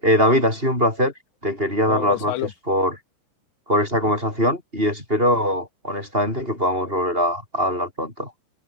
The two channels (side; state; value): left; late; 2.8 ms